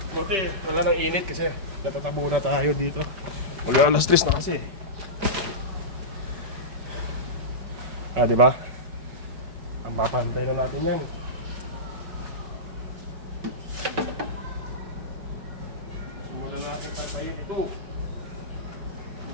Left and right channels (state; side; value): late; left; 5.2 ms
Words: Buti wala nang init kasi natatabo na tayo dito. Wala, alas 3 na kasi. Di ba? Mapantay na natin yan. Patayin ito.